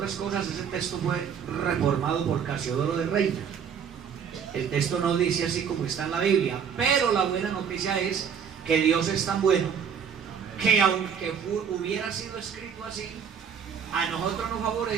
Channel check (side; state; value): left; quieter; 7.3 dB